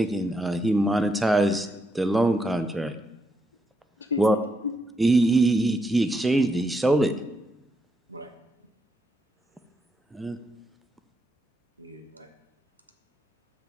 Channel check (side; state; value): both; normal; correlation 0.81